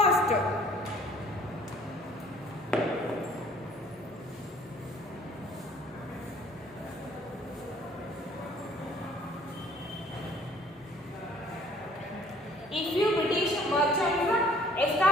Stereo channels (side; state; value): both; normal; correlation 0.56